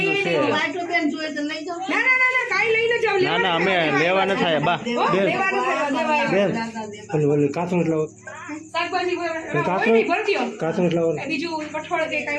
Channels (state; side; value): identical; both; correlation 1.00